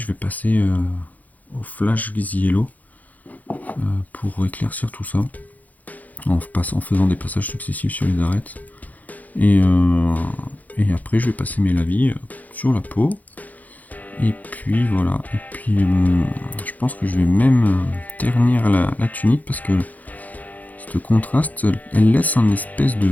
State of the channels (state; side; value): late; right; 0.079 ms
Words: vais passer au Flash Yellow pour éclaircir tout ça en faisant des passages successifs sur les arêtes et après je vais passer mes lavis sur la peau et puis voilà, et puis je pense que je vais même ternir la tunique parce que ce contraste elle laisse un espèce de